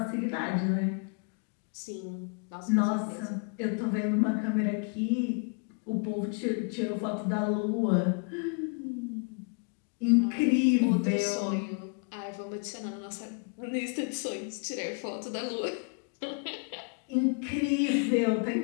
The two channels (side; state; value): right; quieter; 38.3 dB